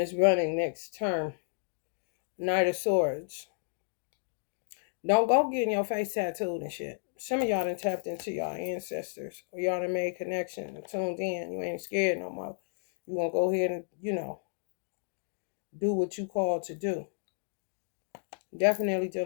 running next term. Knight of Swords. Don't go getting your face tattooed and shit. Some of y'all done tapped into y'all ancestors, or y'all done made connection, tuned in. You ain't scared no more. You gonna go ahead and, do what you called to do. Definitely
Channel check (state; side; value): silent; right; digital silence